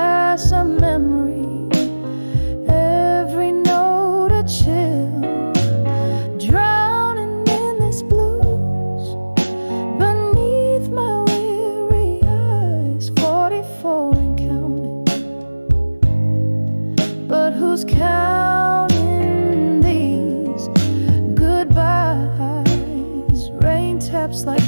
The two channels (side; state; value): both; inverted; correlation -1.00